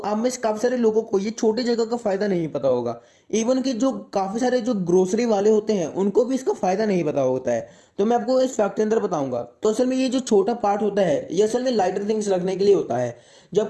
में से काफ़ी सारे लोगों को ये छोटी जगह का फ़ायदा नहीं पता होगा। इवन कि जो काफ़ी सारे जो ग्रोसरी वाले होते हैं उनको भी इसका फ़ायदा नहीं पता होता है। तो मैं आपको इस फैक्ट के अंदर बताऊंगा। तो असल में ये जो छोटा पार्ट होता है ये असल में लाइटर थिंग्स रखने के लिए होता है। जो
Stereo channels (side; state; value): both; identical; correlation 1.00